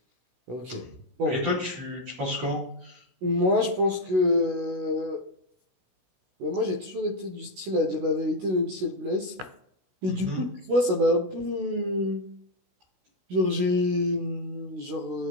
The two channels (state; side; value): late; left; 16 ms